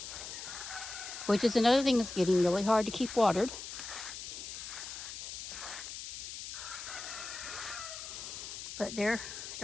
which is another thing that's getting really hard to keep watered. But they're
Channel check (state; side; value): noise; left; hiss, 8 dB below the sound